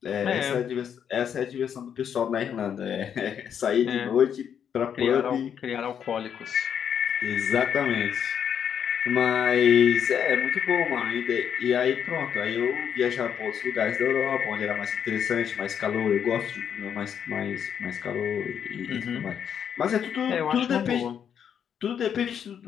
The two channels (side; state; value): right; quieter; 8.3 dB